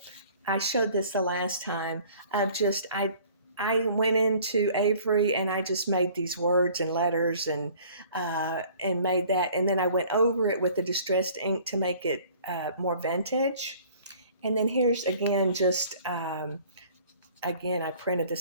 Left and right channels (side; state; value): both; inverted; correlation -0.52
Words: I showed this the last time of just, I went into Avery and I just made these words and letters, and made that, and then I went over it with the distressed ink to make it more vintage. And then here's again, just again, I printed the